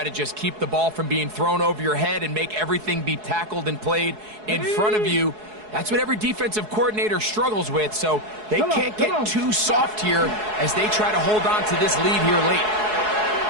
to just keep the ball from being thrown over your head and make everything be tackled and played in front of you? That's what every defensive coordinator struggles with, so they can't get too soft here as they try to hold on to this lead here late.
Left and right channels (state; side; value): late; left; 4.7 ms